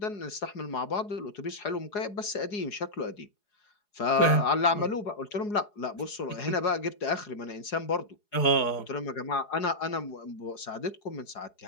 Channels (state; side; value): late; right; 4.8 ms